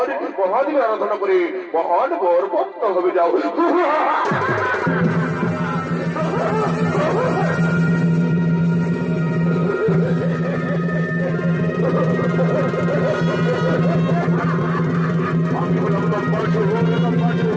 মহাদেবের আরাধনা করে মহান বরবন্ত হবে যাও। আমি হলাম দম্বাসুর, দম্বাসুর,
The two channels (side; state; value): both; identical; correlation 1.00